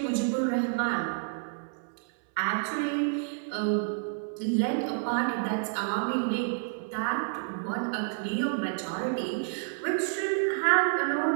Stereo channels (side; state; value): left; silent; 58 dB below the other